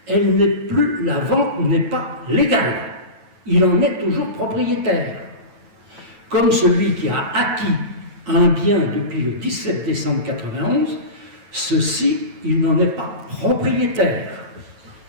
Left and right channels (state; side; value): late; left; 9.2 ms